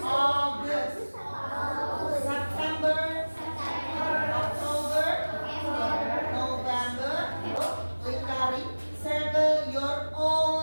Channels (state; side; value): inverted; both; correlation -1.00